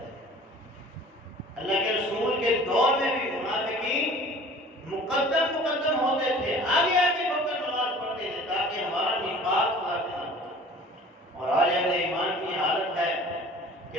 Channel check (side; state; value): both; normal; correlation 0.46